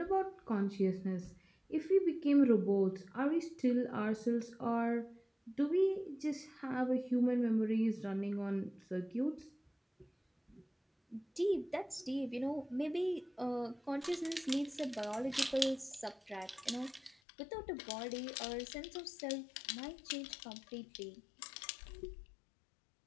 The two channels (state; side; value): drops out; right; at 17.2 s